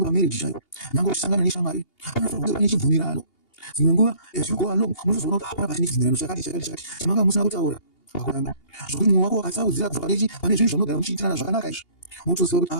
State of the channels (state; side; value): late; right; 2.8 ms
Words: pamarriage chaipo, nyangwe uchisangana neshamwari, panofanirwa kunge pane chibvumirano. Dzimwe nguva as you go along munozoona kuti hapana pachine chibvumirano chakati chamanga musina kutaura pakuramba. Zvokuti mwoyo wako wakasaudzira kubva pane zvinhu zvamunogara muchiitirana zvakanaka izvi, munotoziva kuti